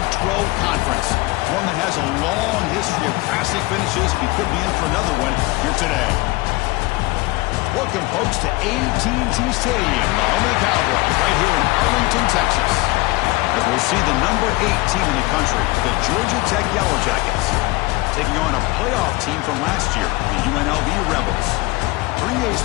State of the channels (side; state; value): right; quieter; 21.8 dB